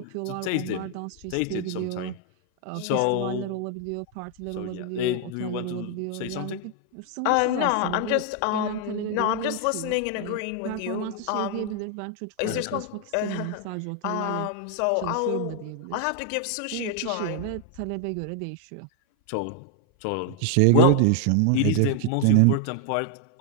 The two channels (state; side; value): different; both; correlation 0.00